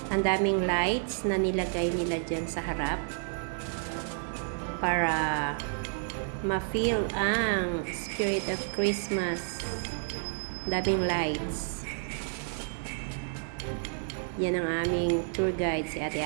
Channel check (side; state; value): left; silent; 58 dB below the other